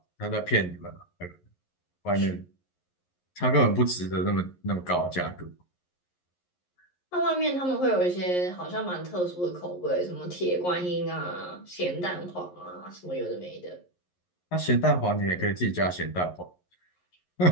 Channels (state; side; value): late; right; 11 ms